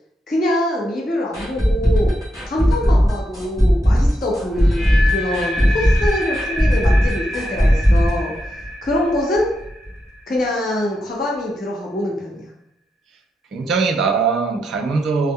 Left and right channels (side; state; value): both; normal; correlation 0.84